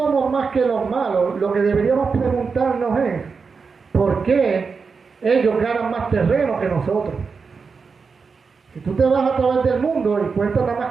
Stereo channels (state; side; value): quieter; left; 5.1 dB